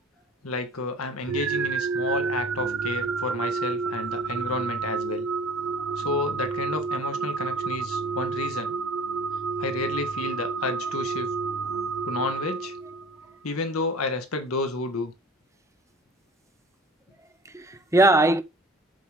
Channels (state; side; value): normal; both; correlation 0.44